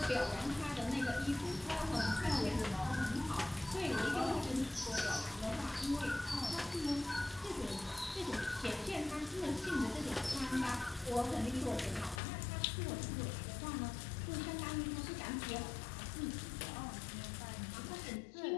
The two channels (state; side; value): drops out; right; at 12.2 s